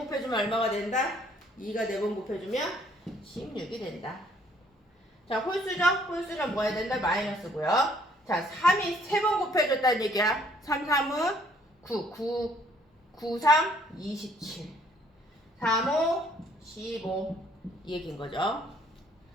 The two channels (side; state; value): both; normal; correlation 0.63